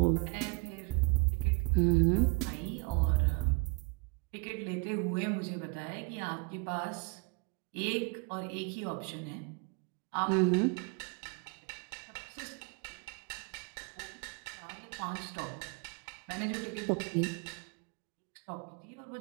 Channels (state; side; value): quieter; left; 30.3 dB